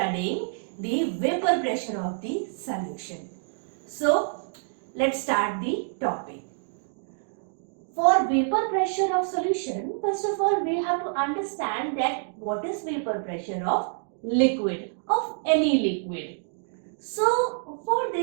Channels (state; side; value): silent; left; digital silence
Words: the vapor pressure of the solution. So let's start the topic. For vapor pressure of solution, first of all we have to understand that what is vapor pressure of liquid, of any liquid. So for